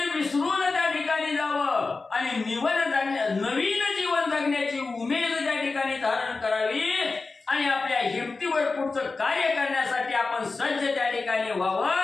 विसरून त्या ठिकाणी जावं आणि नवीन जीवन जगण्याची उमेद त्या ठिकाणी धारण करावी आणि आपल्या हिमतीवर पुढचं कार्य करण्यासाठी आपण सज्ज त्या ठिकाणी व्हावं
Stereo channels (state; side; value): quieter; right; 3.9 dB